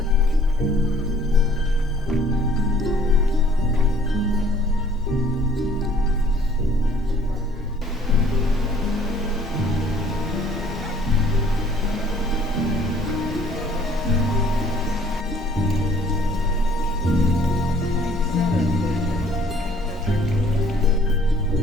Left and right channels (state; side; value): normal; both; correlation 0.58